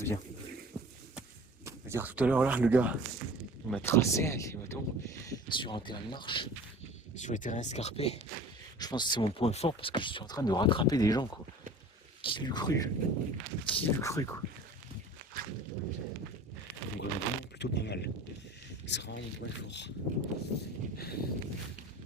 bien. Je veux dire tout à l'heure là, le gars, il m'a tracé avec les bâtons sur un terrain de marche, sur les terrains escarpés. Je pense que c'est mon point fort parce que je suis en train de rattraper des gens quoi. Qui l'eût cru? Qui l'eût cru quoi? Donc vraiment plutôt pas mal. C'est vraiment mon point fort.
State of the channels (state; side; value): normal; both; correlation 0.42